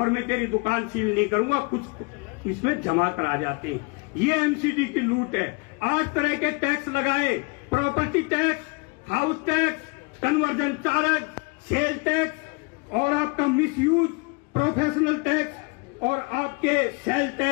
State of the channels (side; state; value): right; quieter; 29.8 dB